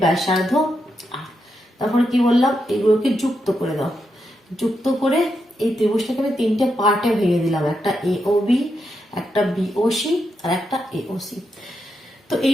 ব্যাসার্ধ, তারপরে কি বললাম এগুলোকে যুক্ত করে দাও। যুক্ত করে এই ত্রিভুজটাকে আমি তিনটে পার্টে ভেঙে দিলাম, একটা এওবি, একটা বিওসি আর একটা এওসি। তো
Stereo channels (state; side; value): normal; both; correlation 0.84